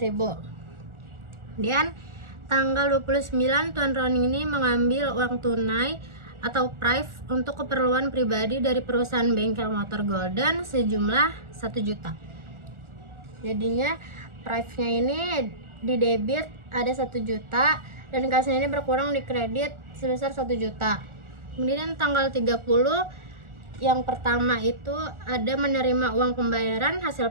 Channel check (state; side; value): late; left; 1.4 ms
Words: Kemudian tanggal 29 Tuan Roni ini mengambil uang tunai atau prive untuk keperluan pribadi dari perusahaan bengkel motor Golden sejumlah 1 juta. Jadinya prive-nya ini di debit ada 1 juta dan kasnya ini berkurang di kredit sebesar 1 juta. Kemudian tanggal 30 yang pertama itu ada menerima uang pembayaran